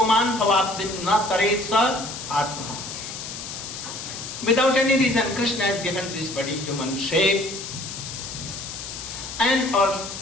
bhavabdin na taretsa atma. Without any reason, Krishna has given this body human shape, and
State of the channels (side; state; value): left; noise; hiss, 9 dB below the sound